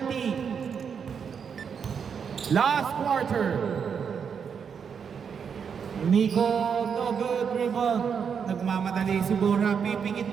Last quarter. Nico, no good rebound. Nagmamadali si Borja. Pipingit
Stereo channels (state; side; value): quieter; left; 6.8 dB